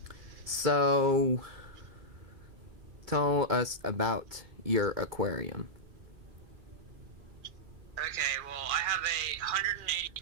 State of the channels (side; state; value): left; late; 2.4 ms